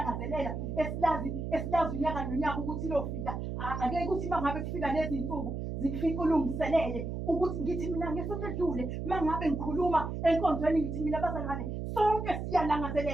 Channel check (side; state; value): right; noise; hum, 4 dB below the sound